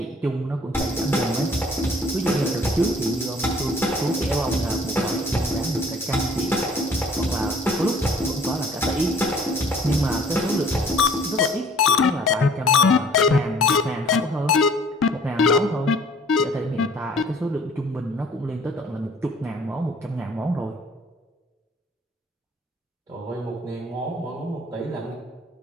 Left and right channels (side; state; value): both; normal; correlation 0.55